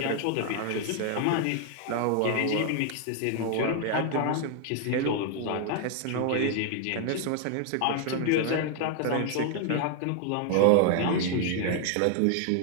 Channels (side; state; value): both; different; correlation 0.00